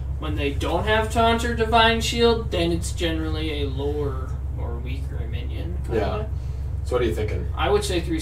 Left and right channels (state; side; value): identical; both; correlation 1.00